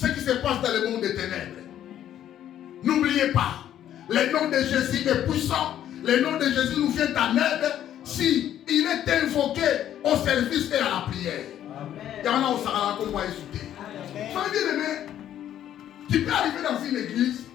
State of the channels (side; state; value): right; quieter; 11.1 dB